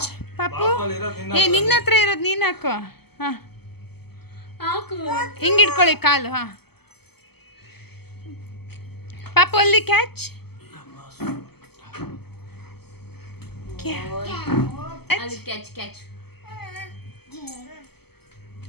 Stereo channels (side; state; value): right; late; 0.96 ms